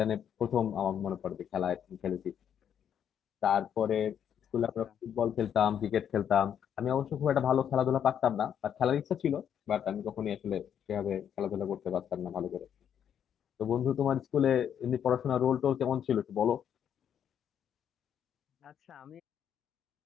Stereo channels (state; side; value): quieter; right; 8.9 dB